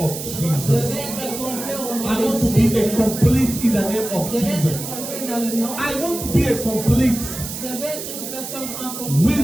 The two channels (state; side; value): noise; right; hiss, 8 dB below the sound